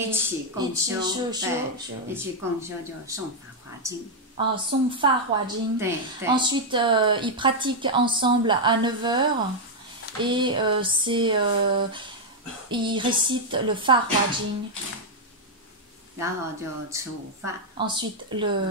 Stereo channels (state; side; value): normal; both; correlation -0.01